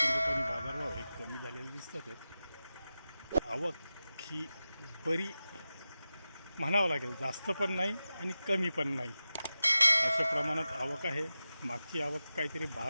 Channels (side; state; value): both; inverted; correlation -0.94